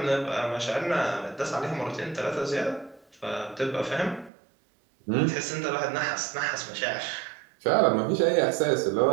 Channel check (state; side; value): drops out; left; at 4.3 s